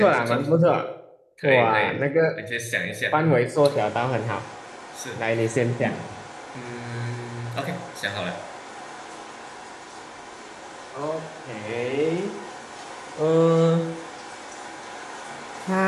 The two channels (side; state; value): both; identical; correlation 1.00